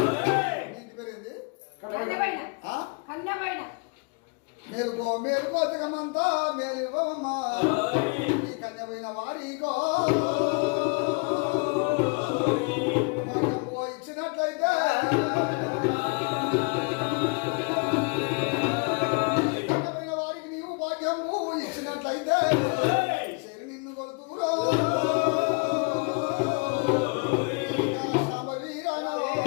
మేలుకో మేలుకో జగమంతా మేలివ్వమ్మా ఈ కన్యపోయిన వారికో ఇచ్చినట్లయితే కన్యపోయిన వారికి నీవు భాగ్యము ఇచ్చినట్లయితే నిన్ను కొలుతూరా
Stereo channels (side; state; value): right; quieter; 34.0 dB